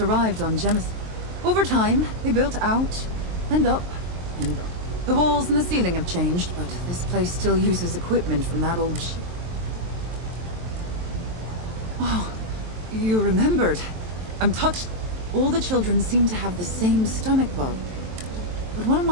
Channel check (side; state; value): left; late; 23 ms